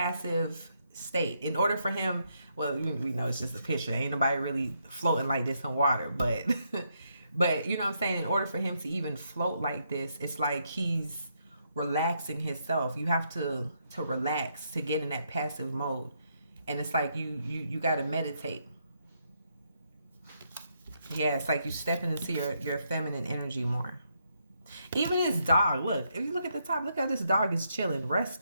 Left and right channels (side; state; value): both; inverted; correlation -0.77